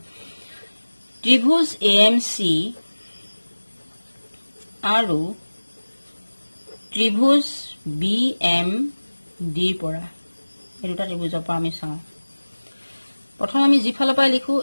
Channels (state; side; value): inverted; both; correlation -1.00